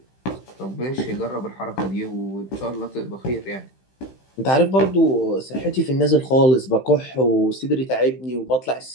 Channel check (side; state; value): right; late; 15 ms